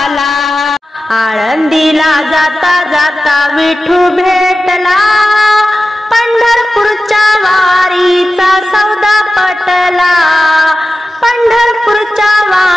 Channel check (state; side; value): normal; both; correlation 0.93